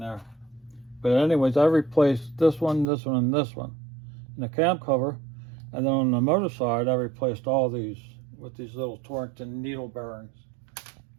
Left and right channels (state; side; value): drops out; left; at 2.9 s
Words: there. But anyways, I replaced this one, and this one. And the cam cover And then on the motor side, I replaced all these with these little Torrington needle bearings.